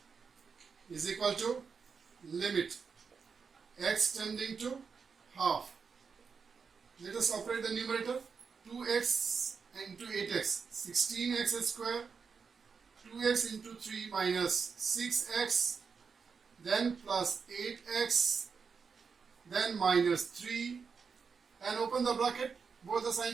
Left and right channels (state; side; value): quieter; left; 5.7 dB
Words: Is equal to limit x tending to half. Let us operate the numerator. 2x into 8x, 16x square, 2x into 3 minus 6x, then plus 8x, then minus 3, and open the bracket, both the